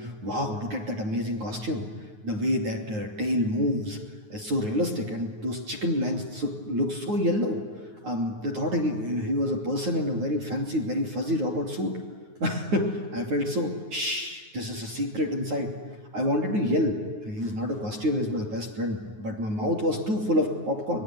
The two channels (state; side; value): late; left; 9.4 ms